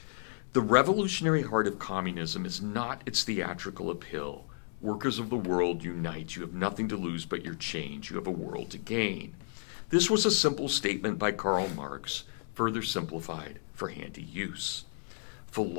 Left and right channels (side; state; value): right; silent; digital silence